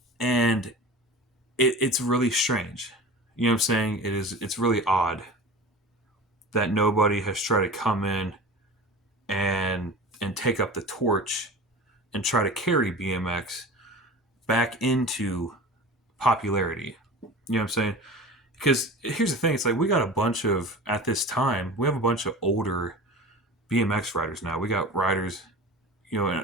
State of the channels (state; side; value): normal; both; correlation 0.35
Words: And it's really strange. You know what I'm saying? It's really odd that nobody has tried to come in and take up the torch and try to carry BMX back into popularity. You know what I'm saying? Because here's the thing, it's like we got a bunch of at this time, we have a bunch of older BMX riders now. We got riders,